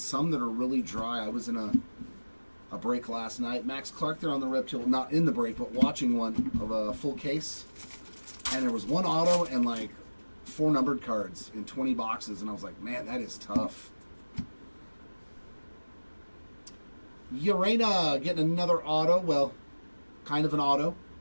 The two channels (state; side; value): inverted; both; correlation -1.00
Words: that are really dry. I was in a break last night. Max Clark there on the Reptile, not in the break, but watching one of a full case. And there was 1 auto and like 4 numbered cards in 20 boxes, and I was like, man, that is tough. Urena getting another auto. Well, kind of an auto.